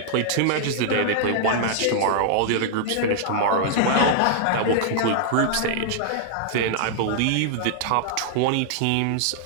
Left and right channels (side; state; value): both; different; correlation -0.01